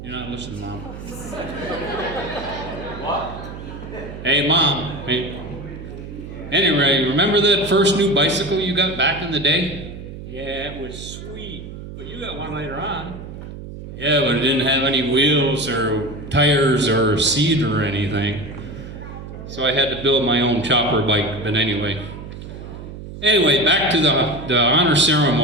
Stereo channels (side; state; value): right; noise; hum, 12 dB below the sound